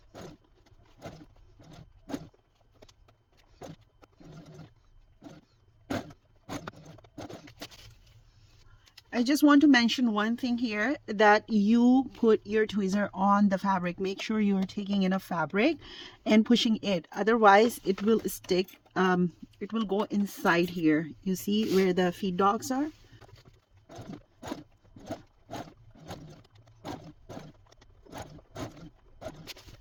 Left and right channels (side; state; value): both; identical; correlation 1.00